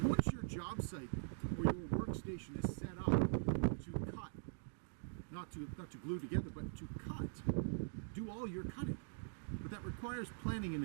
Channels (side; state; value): left; silent; digital silence